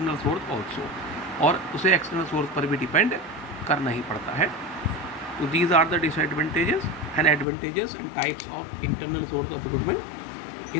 source also, और उसे एक्सटर्नल सोर्स पर भी डिपेंड करना ही पड़ता है। तो these are the disadvantages and advantages and types of internal source of recruitment.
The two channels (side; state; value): right; drops out; at 7.5 s